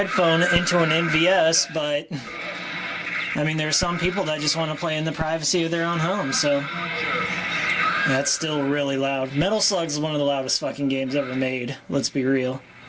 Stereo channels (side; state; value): both; identical; correlation 1.00